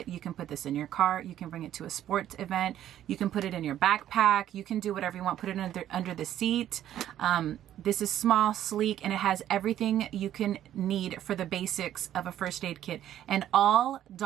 You can put this in your car, you can bring it to a sports event, you can put it in your backpack, you can do whatever you want, put it under the seat. This is small, sleek, and it has everything you can need for the basics of a first aid kit, and all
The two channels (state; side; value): quieter; left; 11.6 dB